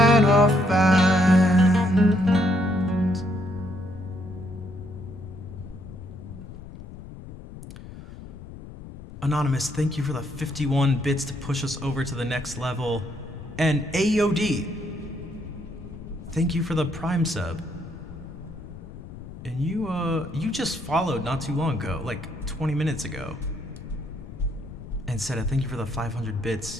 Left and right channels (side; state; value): left; noise; rumble, 14 dB below the sound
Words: offends. Anonymous, thank you for the 51 bits to push us over to the next level. And AOD, thank you for the Prime sub. And you just followed not too long ago, like 20 minutes ago. And said, thank you for the 500